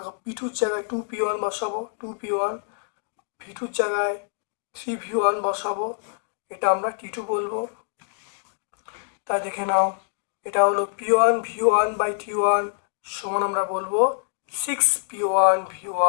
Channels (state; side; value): silent; right; digital silence